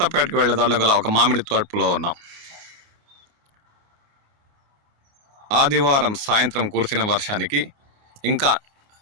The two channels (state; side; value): late; left; 28 ms